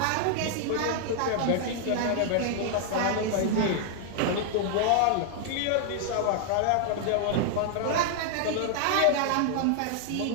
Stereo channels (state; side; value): different; both; correlation 0.00